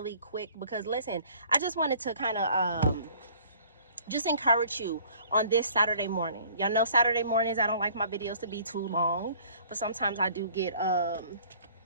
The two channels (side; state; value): both; inverted; correlation -0.53